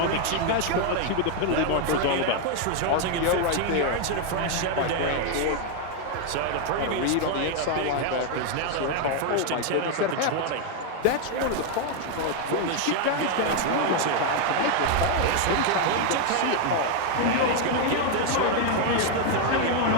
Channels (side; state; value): both; different; correlation 0.01